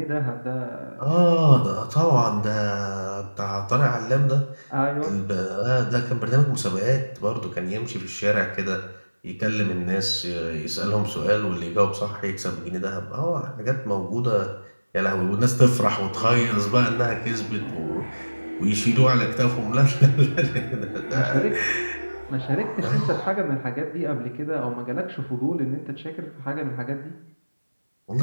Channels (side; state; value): both; inverted; correlation -1.00